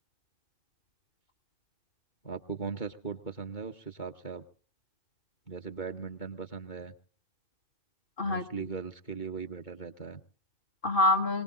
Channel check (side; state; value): right; late; 2.2 ms